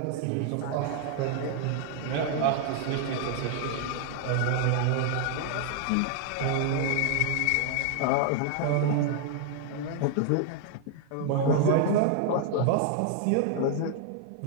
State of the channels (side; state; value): both; different; correlation 0.00